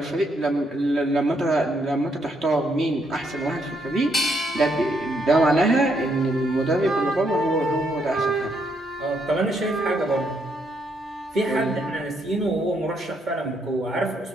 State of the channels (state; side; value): normal; both; correlation 0.74